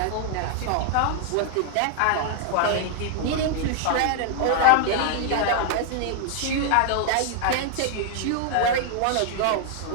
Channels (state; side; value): different; both; correlation 0.00